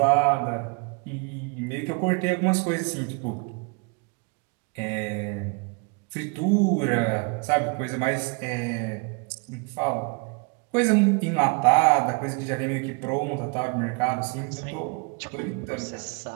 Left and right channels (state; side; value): quieter; left; 32.8 dB